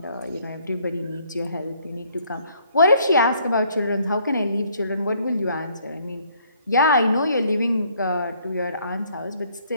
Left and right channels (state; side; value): inverted; both; correlation -0.65